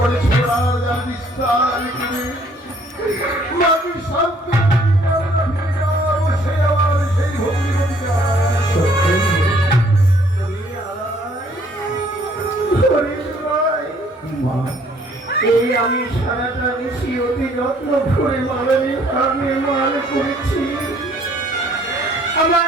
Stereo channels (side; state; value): both; normal; correlation 0.61